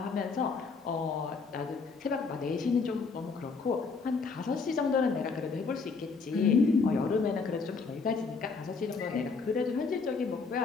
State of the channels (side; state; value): right; quieter; 4.7 dB